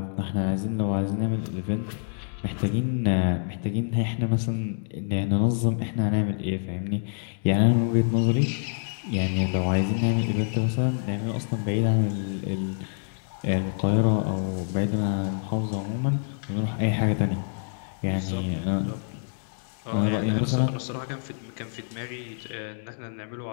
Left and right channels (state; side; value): silent; right; digital silence